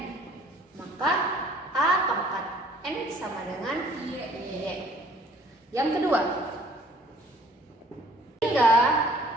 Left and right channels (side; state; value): both; normal; correlation 0.57